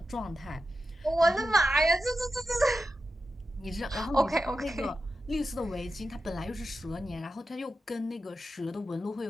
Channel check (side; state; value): both; normal; correlation 0.90